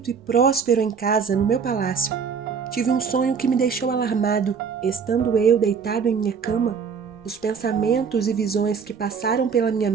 e próspero em casa, no meu palácio. Tive um sonho que me deixou alarmado. Estando eu deitado em minha cama, os pensamentos e visões que passaram pela minha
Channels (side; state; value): left; quieter; 6.2 dB